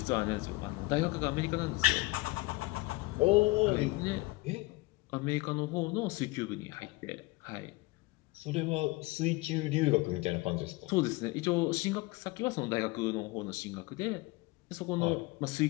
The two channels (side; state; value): right; quieter; 21.7 dB